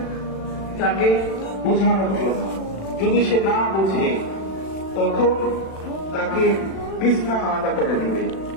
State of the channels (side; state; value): right; late; 36 ms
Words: তাকে বোঝানোর জন্য, যদি সে না বুঝে তখন তাকে বিছনা আলাদা করে দিবে।